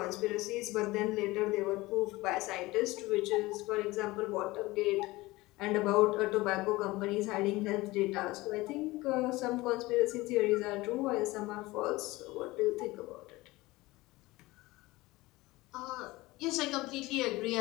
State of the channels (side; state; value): right; quieter; 20.3 dB